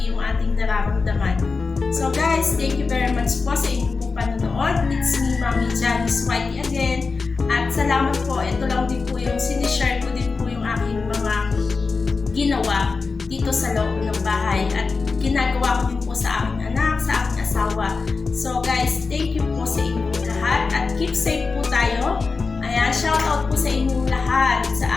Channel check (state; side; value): quieter; right; 4.4 dB